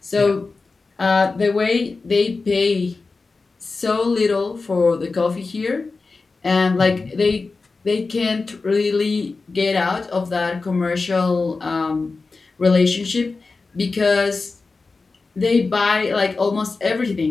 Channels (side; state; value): right; quieter; 4.0 dB